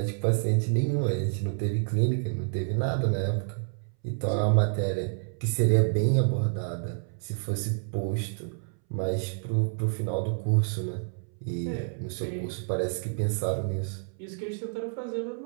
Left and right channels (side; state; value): left; silent; 59 dB below the other